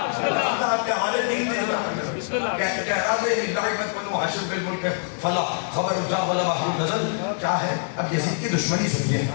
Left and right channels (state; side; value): silent; right; digital silence